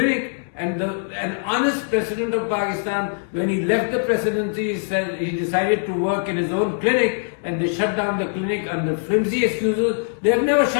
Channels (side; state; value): right; silent; digital silence